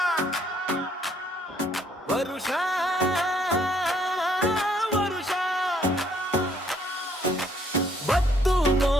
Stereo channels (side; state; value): both; normal; correlation 0.66